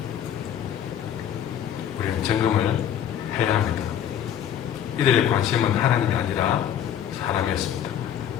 우리는 점검을 해야 합니다. 이들의 관심은 하나님이 아니라 사람이었습니다.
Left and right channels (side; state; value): right; quieter; 9.7 dB